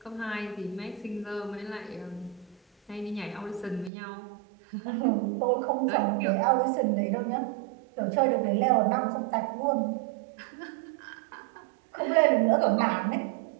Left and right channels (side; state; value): left; drops out; at 3.9 s